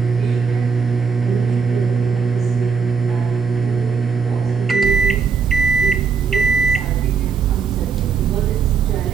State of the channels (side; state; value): left; quieter; 5.7 dB